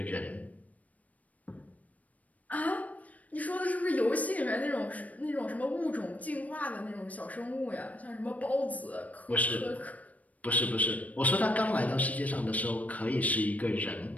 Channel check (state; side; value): late; right; 0.071 ms